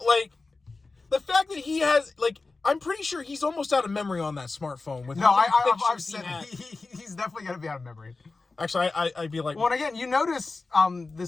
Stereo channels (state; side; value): quieter; right; 3.8 dB